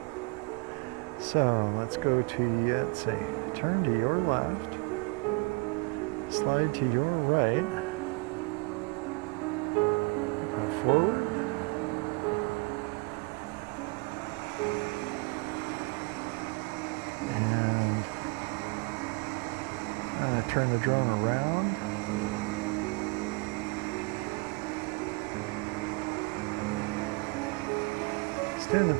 So let's go to, let's see, turn to your left, slide to your right, go forward, and I'm going to turn the drone around. It's doing the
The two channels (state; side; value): quieter; left; 29.4 dB